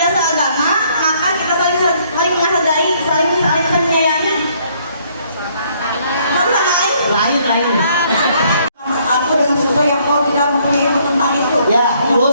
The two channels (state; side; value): inverted; both; correlation -0.66